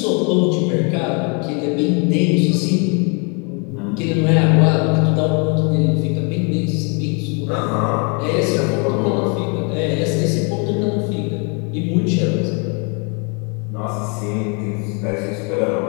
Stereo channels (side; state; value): right; quieter; 33.8 dB